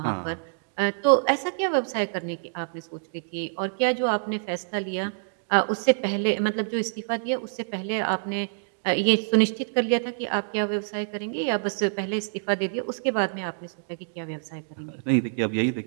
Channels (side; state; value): left; silent; digital silence